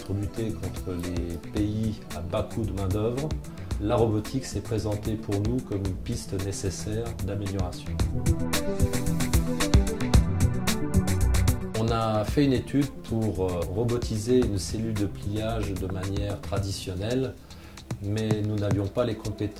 lutter contre les pays à bas coût de main-d'œuvre, la robotique s'est présentée pour nous comme une piste nécessaire d'amélioration. On a fait une étude pour robotiser une cellule de pliage de manière traditionnelle, mais nous n'avions pas les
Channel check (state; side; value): identical; both; correlation 1.00